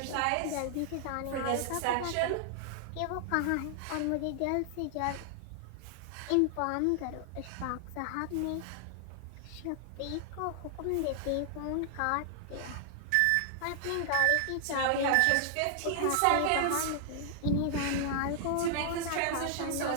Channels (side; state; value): both; different; correlation -0.01